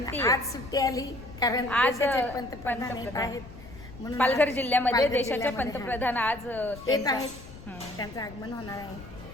आली, कारण आज पंतप्रधान आहेत म्हणून पालघर जिल्ह्यामध्ये देशाचे पंतप्रधान आज येत आहेत. त्यांचं आगमन होणार आहे.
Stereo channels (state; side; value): noise; left; rumble, 17 dB below the sound